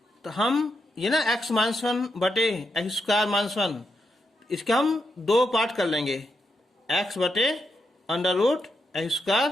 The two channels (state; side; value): normal; both; correlation 0.83